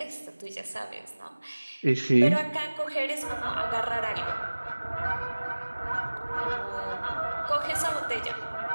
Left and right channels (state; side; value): inverted; both; correlation -1.00